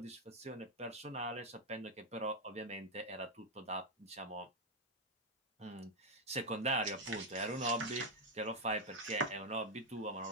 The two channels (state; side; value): normal; both; correlation 0.02